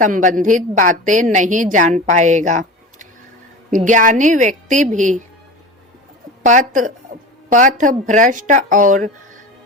बातें नहीं जान पाएगा। ज्ञानी व्यक्ति भी पथ भ्रष्ट और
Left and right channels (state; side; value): normal; both; correlation 0.31